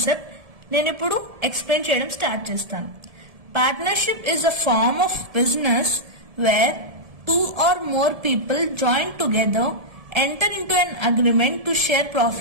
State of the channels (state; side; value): late; left; 1.7 ms